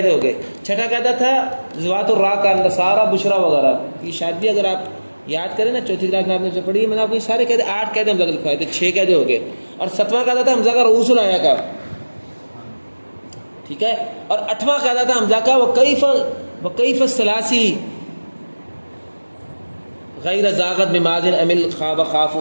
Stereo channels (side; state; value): both; inverted; correlation -1.00